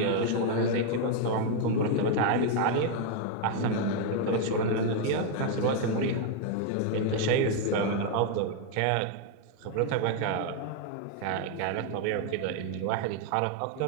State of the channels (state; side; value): different; both; correlation 0.00